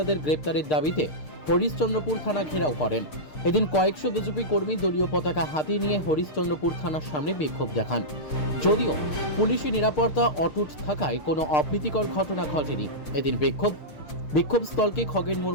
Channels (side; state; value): right; late; 6.6 ms